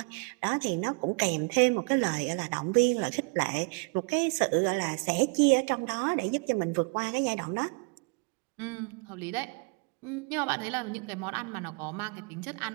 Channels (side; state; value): left; quieter; 32.6 dB